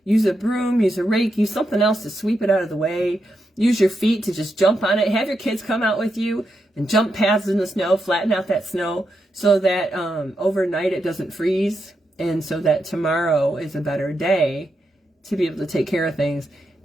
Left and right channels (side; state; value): both; normal; correlation 0.84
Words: Use a broom, use a rake, use something else to sweep it out of the way. Use your feet to just jump on it. Have your kids come out with you and jump paths in the snow, flatten out that snow so that overnight it doesn't freeze, and so that tomorrow is a better day to be able to take care of things.